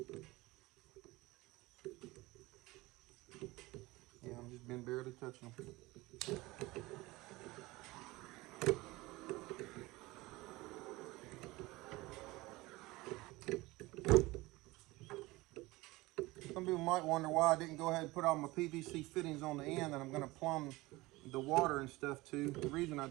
Yeah, I've just been barely touching them. Some people might wonder why I didn't go ahead and put all my PVC fittings on the end that I'm going to plumb the water and stuff to. The reason I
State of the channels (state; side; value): quieter; left; 20.8 dB